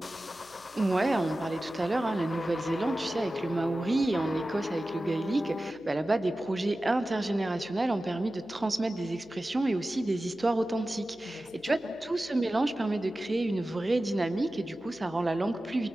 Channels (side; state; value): left; noise; hum, 29 dB below the sound